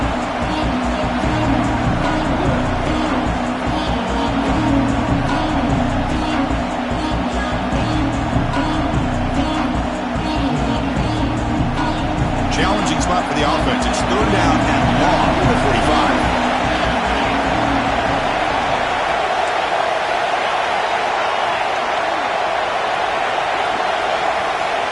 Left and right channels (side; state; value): both; identical; correlation 1.00